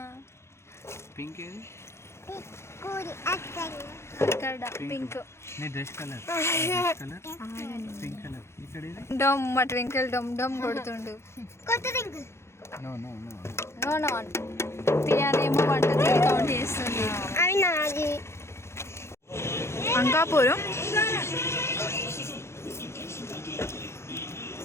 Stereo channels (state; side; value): late; right; 0.13 ms